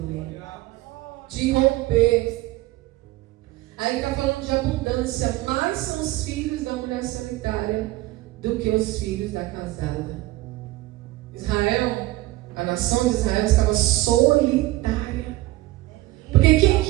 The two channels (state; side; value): quieter; left; 18.2 dB